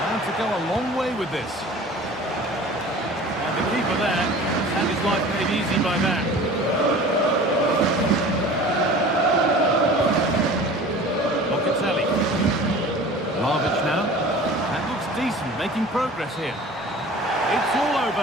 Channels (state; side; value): normal; both; correlation 0.42